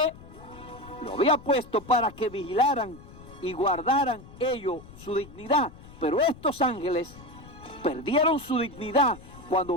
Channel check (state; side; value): noise; left; rumble, 19 dB below the sound